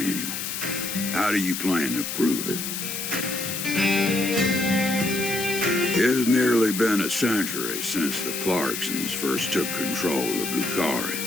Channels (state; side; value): noise; left; hiss, 4 dB below the sound